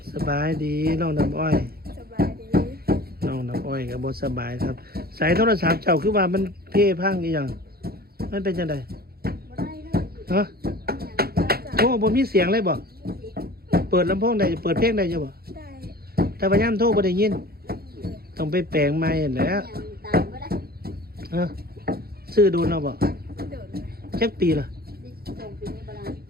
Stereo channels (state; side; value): late; left; 0.45 ms